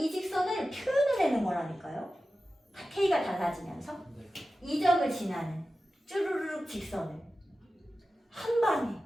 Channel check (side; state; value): both; normal; correlation 0.94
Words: 직선을 표현을 내는 거라니까요. K가 달라지면서 네. 이 점을 지나는 쭈루루룩 직선을 한 방에